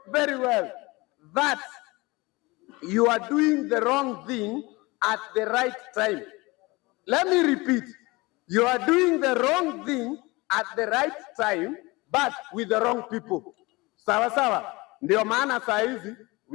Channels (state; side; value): quieter; right; 23.3 dB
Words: very well that you are doing the wrong thing at the right time. Let me repeat, you are doing the wrong thing at the right time, but with the wrong people. Sawa. Ndio maana saa hizi,